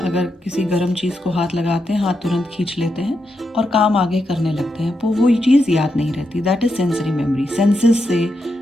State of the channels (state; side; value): normal; both; correlation 0.84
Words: अगर किसी गर्म चीज़ को हाथ लगाते हैं, हाथ तुरंत खींच लेते हैं और काम आगे करने लगते हैं, तो वो चीज़ याद नहीं रहती। That is sensory memory. Senses से